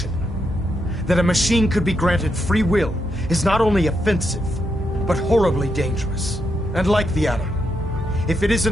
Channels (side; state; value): both; normal; correlation 0.81